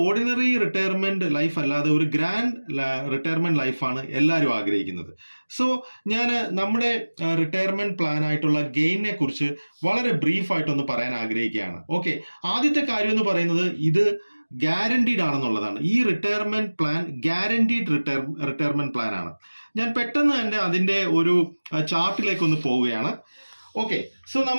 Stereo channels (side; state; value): both; inverted; correlation -1.00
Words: ഓർഡിനറി റിട്ടയർമെന്റ് ലൈഫ് അല്ലാതെ ഒരു ഗ്രാൻഡ് റിട്ടയർമെന്റ് ലൈഫാണ് എല്ലാവരും ആഗ്രഹിക്കുന്നത്. സോ ഞാൻ നമ്മുടെ റിട്ടയർമെന്റ് പ്ലാൻ ആയിട്ടുള്ള ഗെയിനെ കുറിച്ച് വളരെ ബ്രീഫ് ആയിട്ടൊന്ന് പറയാൻ ആഗ്രഹിക്കുകയാണ്. ഓക്കെ, ആദ്യത്തെ കാര്യം എന്ന് പറയുന്നത് ഇത് ഗ്യാരണ്ടീഡ് ആണെന്നുള്ളതാണ്. ഈ retirement plan guaranteed retirement plan ആണ്. ഞാൻ പെട്ടെന്ന് തന്നെ അതിന്റെ ഒരു ചാർട്ടിലേക്ക് ഒന്ന് പോവുകയാണ്. ഓക്കെ, സോ